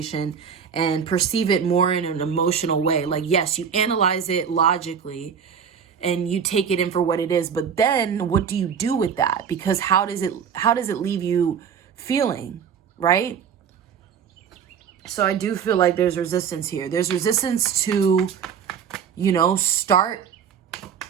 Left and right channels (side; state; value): left; quieter; 7.2 dB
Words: and perceive it more in an emotional way. Like, yes, you analyze it logically and you take it in for what it is. But then what do you do with that? Because how does it leave you feeling, right? So I do feel like there's resistance here. There's resistance to,